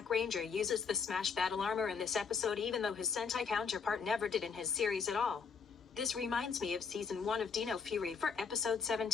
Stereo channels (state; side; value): quieter; right; 5.8 dB